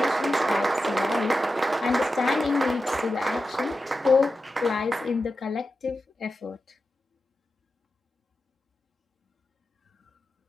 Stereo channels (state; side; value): normal; both; correlation 0.91